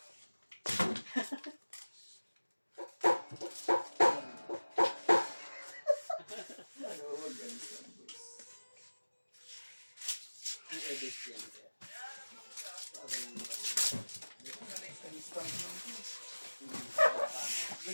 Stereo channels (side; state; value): both; inverted; correlation -1.00